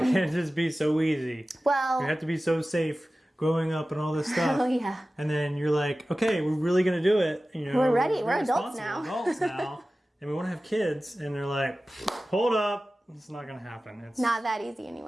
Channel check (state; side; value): normal; both; correlation 0.96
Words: it just be so easy? Well, You have to be so safe growing up and all this stuff. oh yeah. And then you're like, okay, we're really going to do it. You know, We're ready. We're adults responsible now. adults now. And we want to have kids. And they're like, hold up. It's not going to happen. It's Not that easy